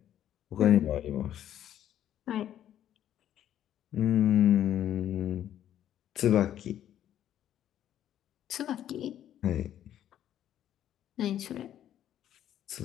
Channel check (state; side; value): quieter; right; 11.1 dB